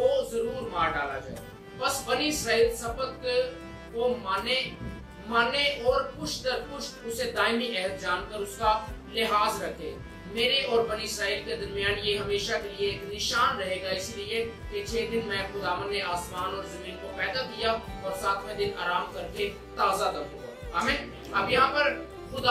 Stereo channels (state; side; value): identical; both; correlation 1.00